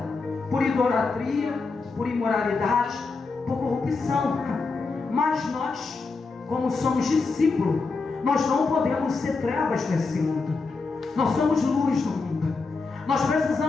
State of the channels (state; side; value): quieter; right; 4.1 dB